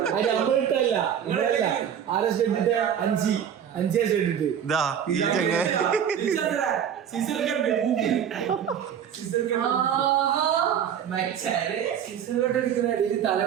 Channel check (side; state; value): left; quieter; 8.8 dB